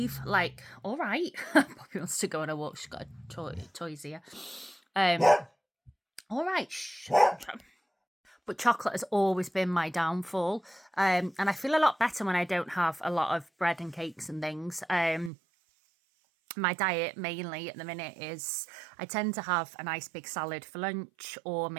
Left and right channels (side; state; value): left; drops out; at 15.3 s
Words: like, all right. Poppy wants to go on a walk. She's got a toys here. All right. But chocolate has always been my downfall. And I feel a lot better when I don't have a lot of bread and cakes and things. My diet mainly at the minute is I tend to have a nice big salad for lunch or